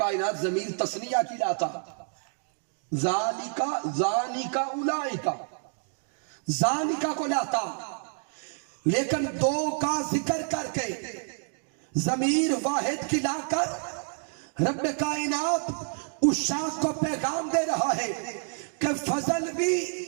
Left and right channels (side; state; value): left; silent; 59 dB below the other